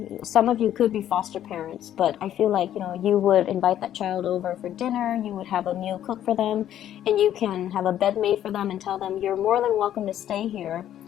Some of you could be foster parents, but I feel like, you would invite that child over for dinner, you would have a meal cooked for them, and you can have a bed made for them and tell them you're more than welcome to stay here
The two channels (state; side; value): quieter; right; 11.3 dB